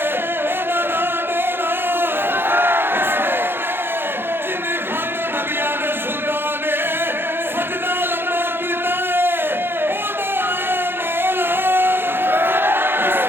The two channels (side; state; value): left; late; 0.10 ms